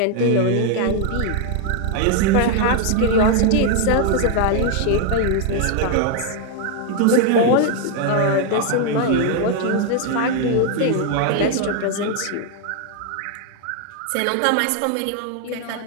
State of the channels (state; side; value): different; both; correlation 0.00